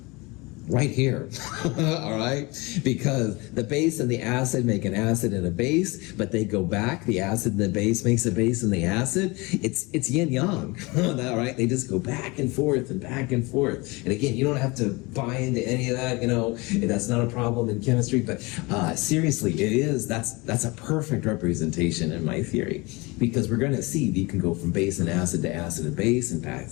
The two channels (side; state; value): right; quieter; 25.0 dB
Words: right here, all right? Because the base and the acid make an acid and a base, but they go back. The acid and the base makes a base and the acid. It's yin yang, all right? They just go back and forth and back and forth. And again, you don't have to buy into any of that, that's not a problem in chemistry, but seriously, that's a perfect representation in my theory, because we're going to see that you can go from base and acid and base and